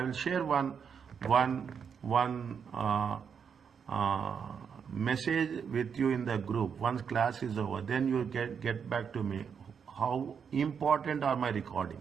will share one message with you in the group. Once class is over, then you get back to me. How important are my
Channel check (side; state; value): left; quieter; 6.9 dB